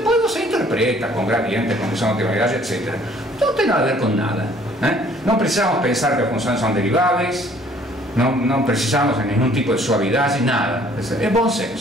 você interpreta com gradiente, condição de otimalidade, etc. Não tem nada a ver com nada, né? Não precisamos pensar que as funções são deriváveis, não precisamos de nenhum tipo de suavidade, nada. É bom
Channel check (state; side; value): normal; both; correlation 0.58